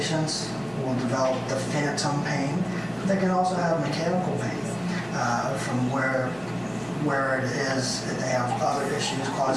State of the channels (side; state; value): left; noise; hum, 24 dB below the sound